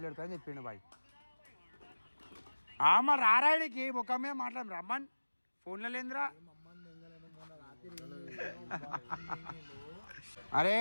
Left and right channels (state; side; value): inverted; both; correlation -1.00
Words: పెడతారని చెప్పిండు బాయ్ మరి రారాడికి ముఖమే మాట్లాడు రమ్మన్ ఫోన్లో లేదురా అరే